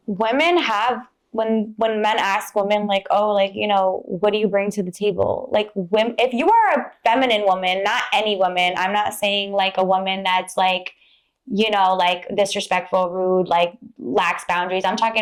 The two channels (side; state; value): both; identical; correlation 1.00